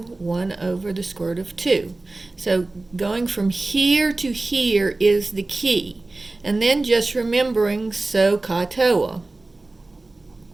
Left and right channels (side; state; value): left; quieter; 3.1 dB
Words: 1 over the square root of 2. So going from here to here is the key. And then just remembering SOHCAHTOA.